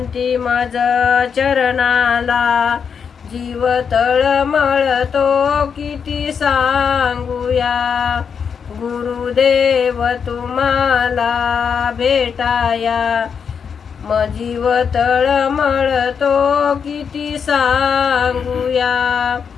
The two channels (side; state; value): right; quieter; 6.7 dB